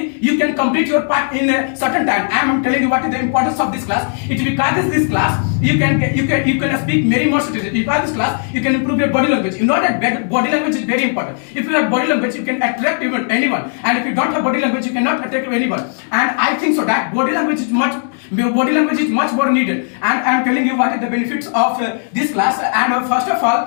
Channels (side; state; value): right; silent; 61 dB below the other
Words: you can complete your part in a certain time. And I'm telling you what is the importance of this class. It is because this class you can speak many more sentences. Because this class you can improve your body language. You know that body language is very important. If you have body language you can attract anyone, and if you don't have body language you cannot attract anyone. And I think so that body language is much more needed. And I'm telling you what is the benefits of this class. And first of